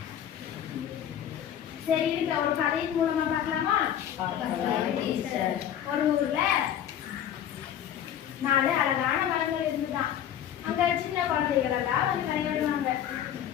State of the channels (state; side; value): quieter; right; 10.2 dB